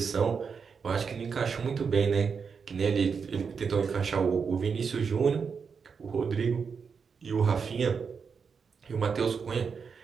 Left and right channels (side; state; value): left; quieter; 5.9 dB